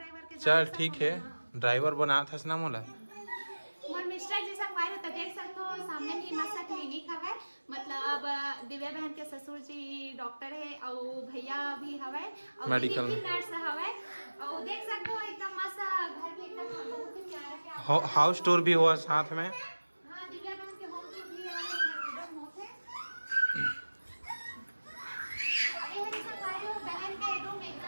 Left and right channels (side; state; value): both; inverted; correlation -1.00